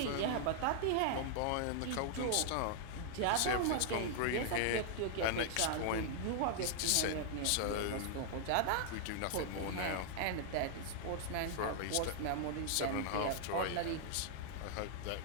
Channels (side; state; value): both; different; correlation -0.01